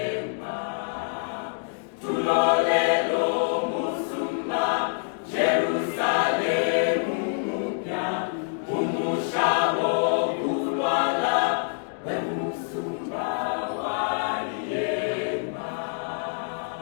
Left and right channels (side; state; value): right; silent; 61 dB below the other